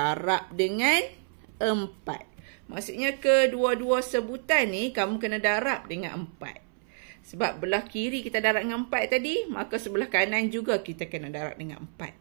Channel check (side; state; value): left; silent; 59 dB below the other